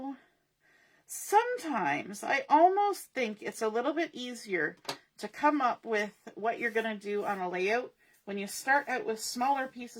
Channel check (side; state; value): both; identical; correlation 1.00